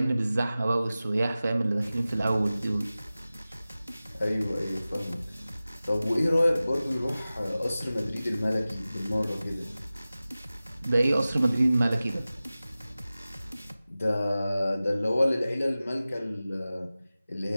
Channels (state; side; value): inverted; both; correlation -0.96